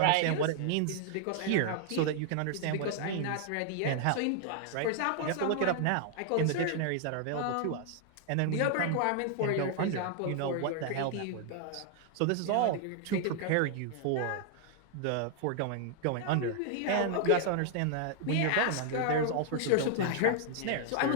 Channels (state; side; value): different; both; correlation 0.00